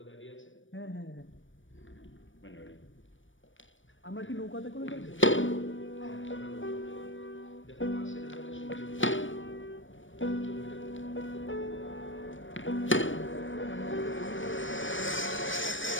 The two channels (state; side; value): late; right; 0.56 ms